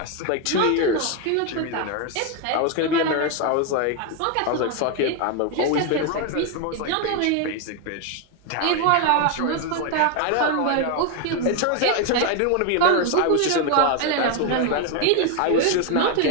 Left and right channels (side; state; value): both; different; correlation 0.01